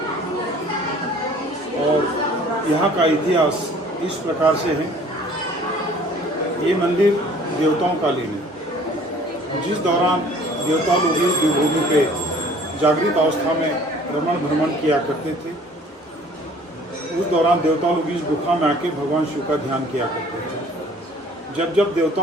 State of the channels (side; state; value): both; normal; correlation 0.52